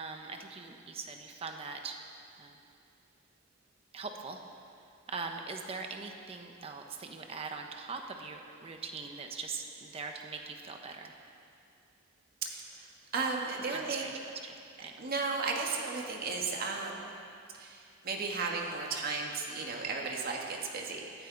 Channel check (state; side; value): quieter; left; 3.8 dB